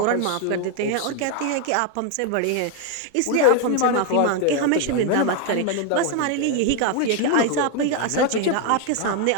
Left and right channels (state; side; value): different; both; correlation 0.01